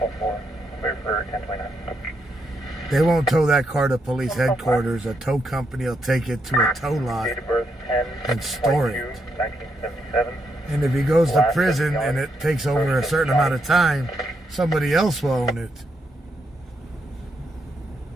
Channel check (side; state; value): both; normal; correlation 0.79